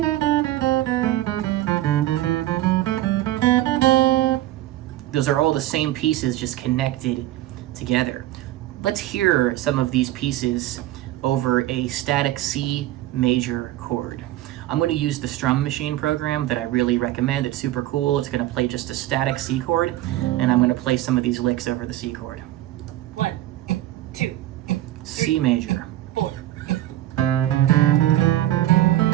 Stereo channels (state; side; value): quieter; left; 14.7 dB